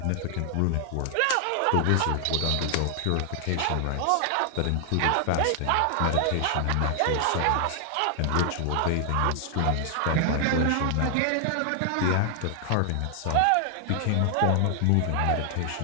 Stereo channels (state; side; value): different; both; correlation 0.00